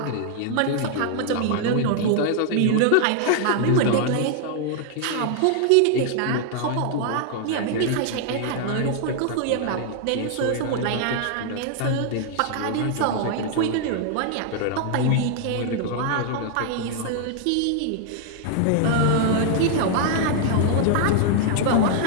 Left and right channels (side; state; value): both; different; correlation 0.00